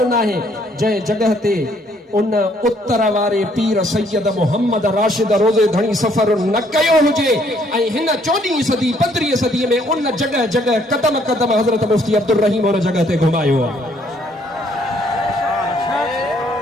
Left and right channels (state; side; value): normal; both; correlation 0.66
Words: न आहे जंहिं जॻह ते उन उत्तर वारे पीर सैयद मोहम्मद राशिद रोज़े धणी सफ़र न कयो हुजे ऐं हिन 14वीं सदी 15वीं सदी में उन जॻह जॻह कदम कदम हज़रत मुफ्ती अब्दुल रहीम उन जॻह ते घुमायो आहे